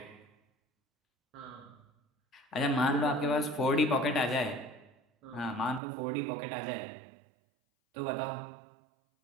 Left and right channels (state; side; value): drops out; left; at 5.8 s